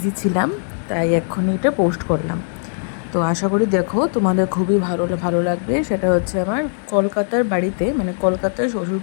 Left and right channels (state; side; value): silent; right; digital silence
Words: ছিলাম, তাই এক্ষুনি এটা পোস্ট করলাম। তো আশা করি দেখো তোমাদের খুবই ভালো লাগবে। সেটা হচ্ছে আমার কলকাতার বাড়িতে, মানে কলকাতার